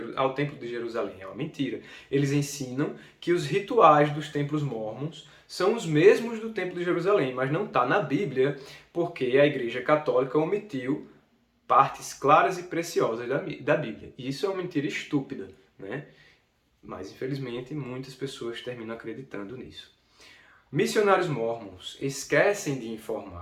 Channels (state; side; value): identical; both; correlation 1.00